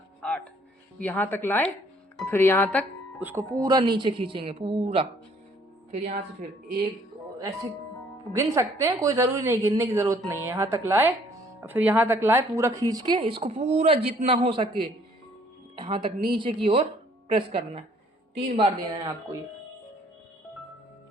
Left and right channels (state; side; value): normal; both; correlation 0.61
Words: 8 यहाँ तक लाए, फिर यहाँ तक उसको पूरा नीचे खींचेंगे पूरा। फिर यहाँ से फिर एक ऐसे गिन सकते हैं, कोई ज़रूरी नहीं, गिनने की ज़रूरत नहीं है। यहाँ तक लाए, फिर यहाँ तक लाए, पूरा खींच के इसको पूरा जितना हो सके यहाँ तक नीचे की ओर प्रेस करना है। 3 बार देना है आपको ये